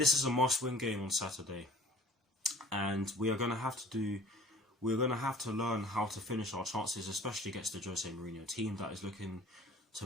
is a must-win game on Saturday, and we're going to have to learn how to finish our chances, especially against the Jose Mourinho team that is looking to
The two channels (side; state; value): both; normal; correlation 0.48